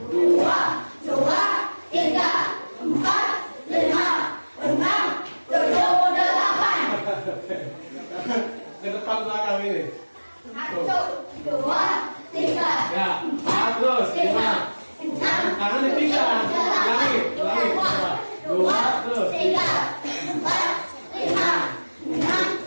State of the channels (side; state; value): both; inverted; correlation -1.00